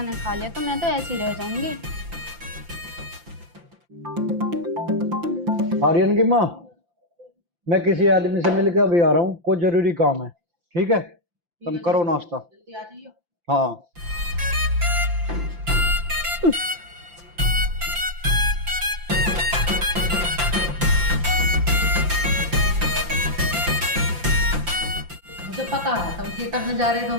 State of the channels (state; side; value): late; left; 5.8 ms